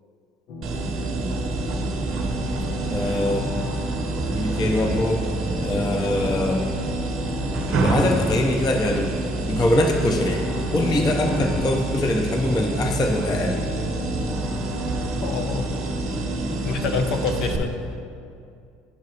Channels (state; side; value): normal; both; correlation 0.70